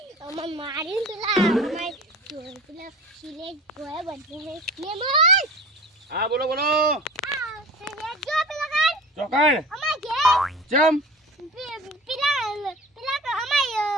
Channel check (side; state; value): both; normal; correlation 0.37